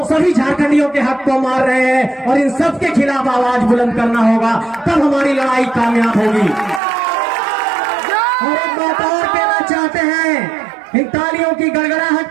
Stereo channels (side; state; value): left; drops out; at 6.8 s